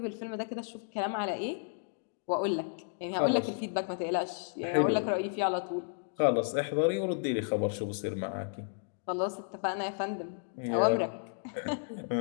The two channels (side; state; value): right; silent; digital silence